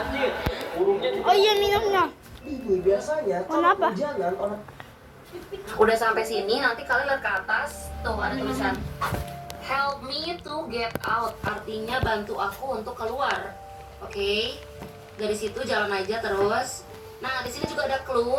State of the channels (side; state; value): both; identical; correlation 1.00